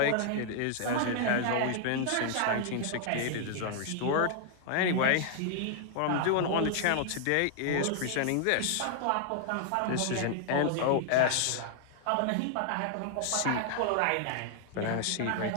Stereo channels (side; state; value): both; different; correlation 0.00